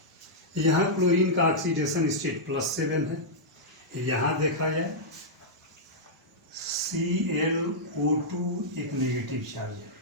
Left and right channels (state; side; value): normal; both; correlation -0.09